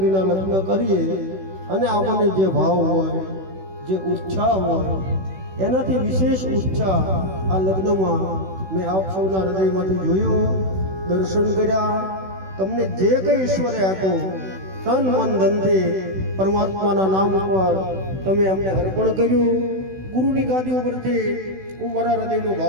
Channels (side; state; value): left; late; 16 ms